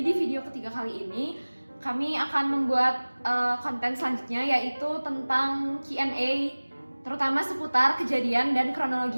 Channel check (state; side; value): inverted; both; correlation -1.00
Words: video ketiga kali ini kami akan membuat konten selanjutnya, yaitu tentang Q&A, terutama seputar kejadian dan